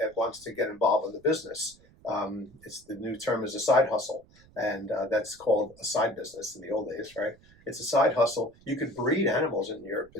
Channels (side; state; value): right; noise; rumble, 27 dB below the sound